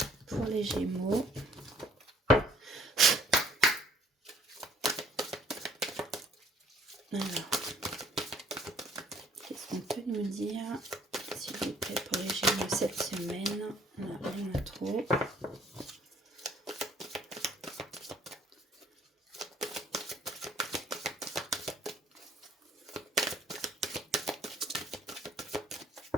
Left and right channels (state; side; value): normal; both; correlation 0.59